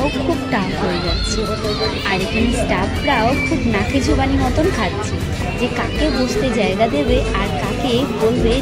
খুব টাফ হয়ে যাচ্ছে। আর এখানে স্টাফরাও খুব নাকে জোবানি মতন খাচ্ছে যে কাকে বসতে জায়গা দেবে আর কাকে বলবে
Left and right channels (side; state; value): both; identical; correlation 1.00